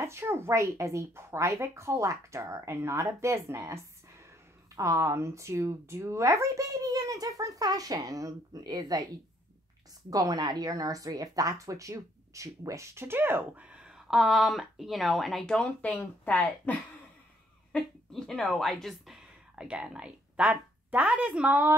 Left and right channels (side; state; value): both; normal; correlation 0.68